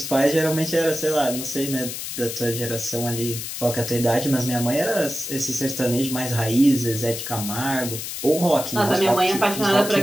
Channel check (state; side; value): noise; left; hiss, 7 dB below the sound